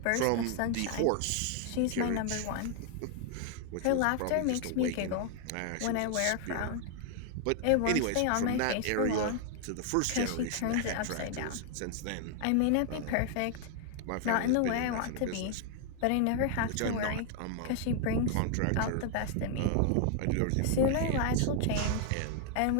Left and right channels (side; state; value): both; different; correlation 0.00